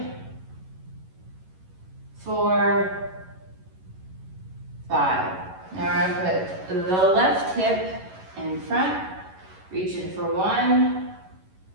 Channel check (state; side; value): late; left; 11 ms